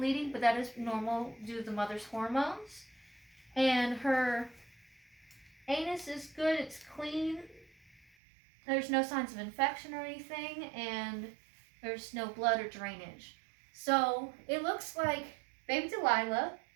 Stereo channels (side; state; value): left; drops out; at 8.1 s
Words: but that is normal due to the mother's hormones. And her anus is good, it's clean. There's no signs of infection or anything, and there's no blood or drainage. So it looks like baby Delilah